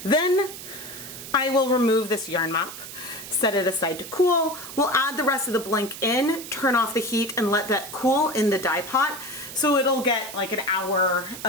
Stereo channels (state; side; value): noise; right; hiss, 12 dB below the sound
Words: Then I will remove this yarn mop, set it aside to cool. We'll add the rest of the blank in, turn off the heat, and let that cool in the dye pot, so it'll get like an hour